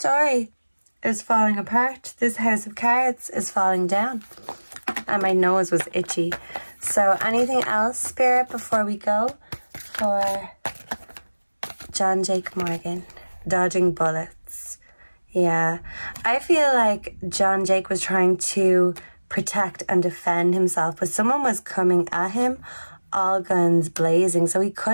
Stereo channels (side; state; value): both; inverted; correlation -1.00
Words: is falling apart. This house of cards is falling down. And my nose was itchy. So anything else, Spirit, before we go for Jon Jake Morgan? Dodging bullets. Yeah. I feel like Jon Jake was trying to protect and defend himself, but someone was coming at him, all guns blazing. So he